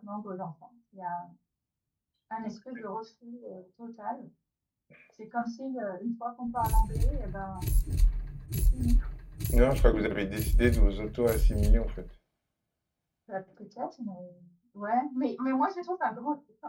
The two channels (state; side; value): identical; both; correlation 1.00